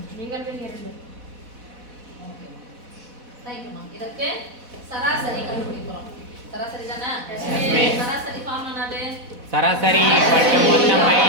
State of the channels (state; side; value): late; left; 4.1 ms